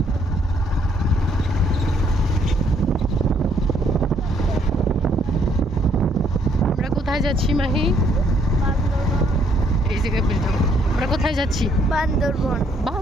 আমরা কোথায় যাচ্ছি মাহি? এই জায়গায় বলতাম আমরা কোথায় যাচ্ছি? বান্দরবন।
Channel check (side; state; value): both; normal; correlation 0.68